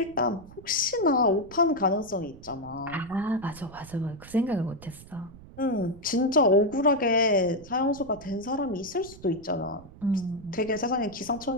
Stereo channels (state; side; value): noise; right; rumble, 19 dB below the sound